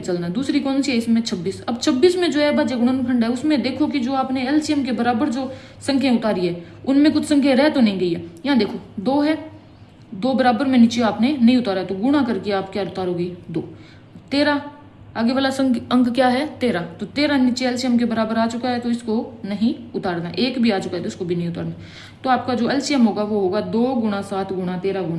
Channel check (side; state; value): both; identical; correlation 1.00